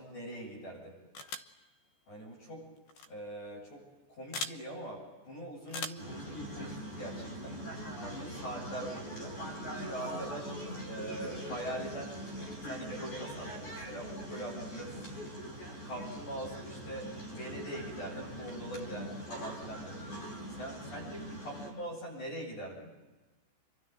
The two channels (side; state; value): right; late; 14 ms